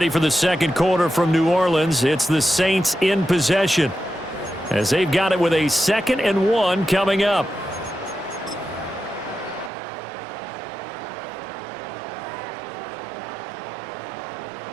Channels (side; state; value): left; drops out; at 9.7 s